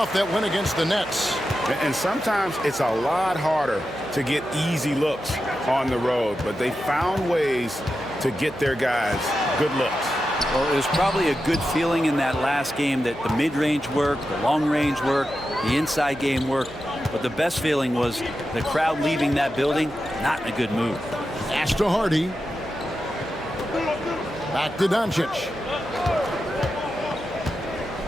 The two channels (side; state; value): right; noise; hum, 21 dB below the sound